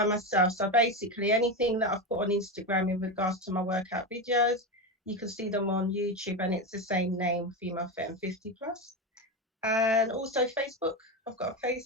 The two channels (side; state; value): both; normal; correlation 0.16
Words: myself. So basically, anything that I've put on Instagram in regards to my workout videos, you can see them on YouTube, and it's the same name, Femalefitand50plus. And also Facebook. I've got a